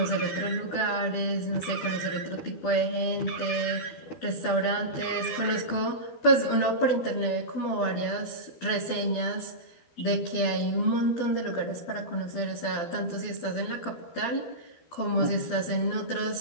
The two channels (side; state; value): right; late; 12 ms